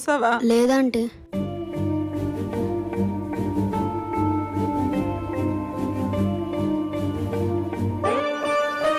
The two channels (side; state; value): both; identical; correlation 1.00